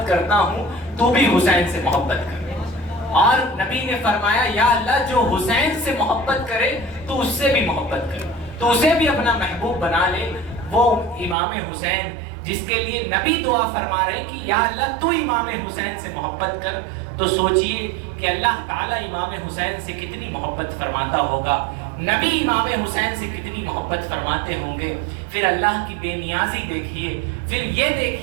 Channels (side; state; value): left; drops out; at 11.4 s